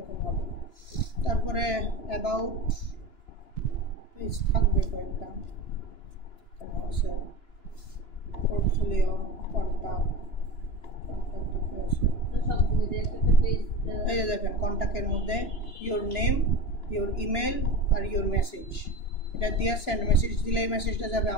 হবে তারপরে অ্যাবাউট পেজ থাকবে কয়েকটা আছে পোর্টফোলিও কন্ট্যাক্ট এই যে দেখেন কন্ট্যাক্টের মধ্যে ইয়োর নেম ইয়োর ইমেল আর ইয়োর মেসেজ এটা দিয়ে সেন্ড মেসেজ দিলে এই মেসেজটা যাবে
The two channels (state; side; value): late; right; 2.9 ms